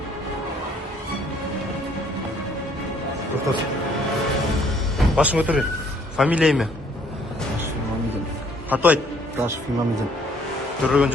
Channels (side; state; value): both; normal; correlation 0.62